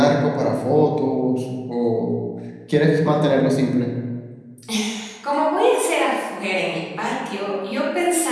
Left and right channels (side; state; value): both; identical; correlation 1.00